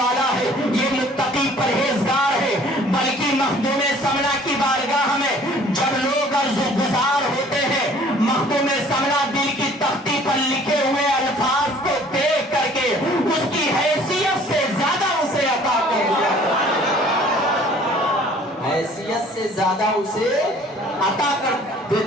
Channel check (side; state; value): both; normal; correlation 0.53